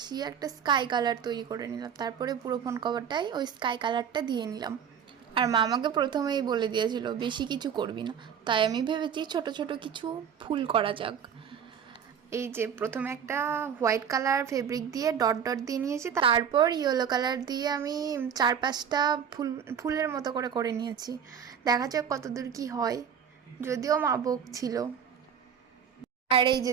একটা স্কাই কালার তৈরি করে নিলাম। তারপরে পুরো ফোন কভারটাই ওই স্কাই কালারটা দিয়ে নিলাম। আর মা আমাকে প্রথমেই বলে দিয়েছিল বেশি কিছু করবি না, তাই আমি ভেবেছি ছোট ছোট কিছু ফুল করা যাক। এই যে প্রথমে একটা হোয়াইট কালার ফেব্রিক দিয়ে ডট ডট দিয়ে নিয়েছি, তারপর ইয়েলো কালার দিয়ে আমি 4-5টা ফুলের মতো করে করে নিয়েছি। দেখা যাক কতদূর কি হয়, যদিও মা বকছিল। আর এই যে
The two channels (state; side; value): quieter; left; 7.9 dB